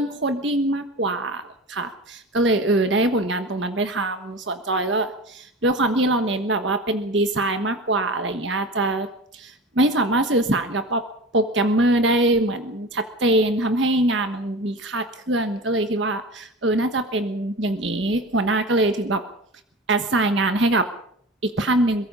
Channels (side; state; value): both; normal; correlation 0.32